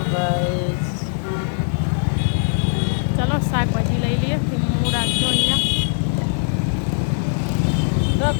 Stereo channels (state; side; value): silent; right; digital silence